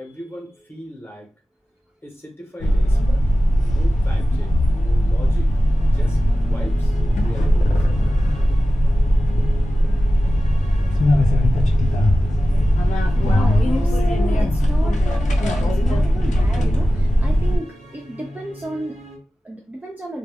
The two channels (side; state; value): both; normal; correlation 0.95